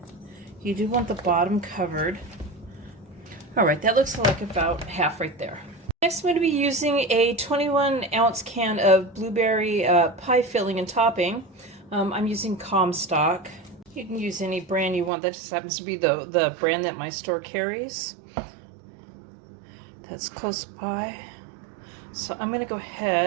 You do want the bottom covered. Alright, that looks like about half right there. Next I'm going to be using a 21-ounce can of blueberry pie filling and topping. I'm using Comstock. You can use any brand you want. That just happens to be the brand that my store carries. That's close by. So I'm going to go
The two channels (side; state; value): left; drops out; at 15.1 s